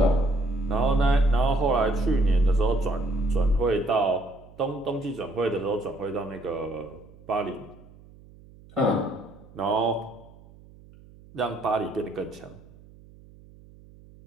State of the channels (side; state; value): right; noise; hum, 23 dB below the sound